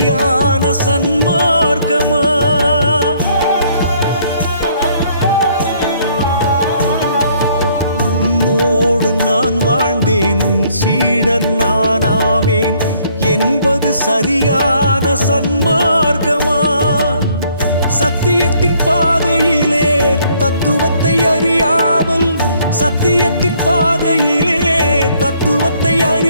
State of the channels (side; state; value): both; inverted; correlation -0.65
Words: சன்மார்க்கமா. உன்னோடு நான் வாழ்ந்தேன், உன் சீடன் நானாவேன் என்பது சரியான சன்மார்க்கமா. சத்தியத்தின் பாதையிலே தத்துவத்தை அறியாமல், சத்தியத்தின் பாதையிலே தத்துவத்தை